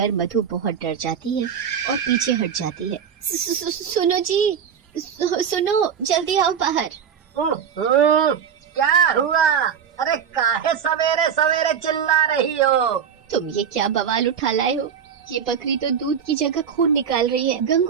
मधु बहुत डर जाती है और पीछे हट जाती है। सुनो जी, सुनो, जल्दी आओ बाहर। क्या हुआ? अरे काहे सवेरे सवेरे चिल्ला रही हो? तुम ये क्या बवाल उठा लाए हो? ये बकरी तो दूध की जगह खून निकाल रही है।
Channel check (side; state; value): left; quieter; 7.7 dB